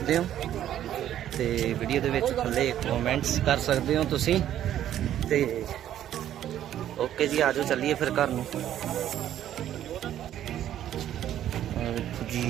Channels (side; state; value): left; quieter; 11.4 dB